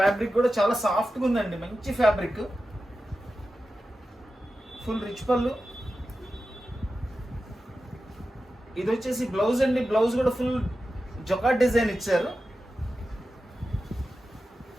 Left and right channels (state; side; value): normal; both; correlation 0.92